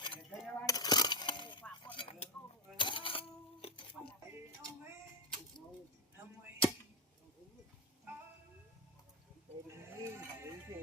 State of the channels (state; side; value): normal; both; correlation 0.11